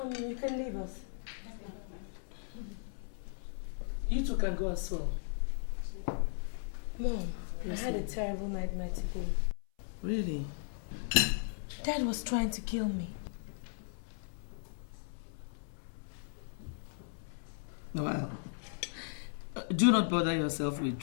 can leave us. You two can go as well. Mom, yes, I had a terrible nightmare today. Really? Dad was trying to kill me. Well, do not bother yourself with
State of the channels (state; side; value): silent; right; 53 dB below the other